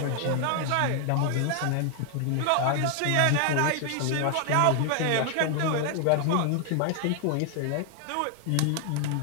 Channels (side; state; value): both; different; correlation 0.00